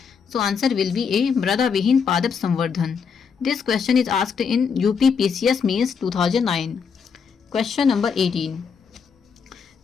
So answer will be A, मृदा विहीन पादप संवर्धन। This question is asked in UP PCS mains 2009। Question number 18,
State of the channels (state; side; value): quieter; right; 6.2 dB